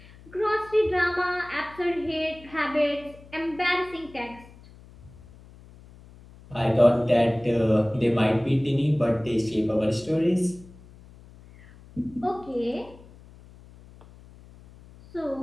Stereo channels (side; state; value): left; noise; hum, 22 dB below the sound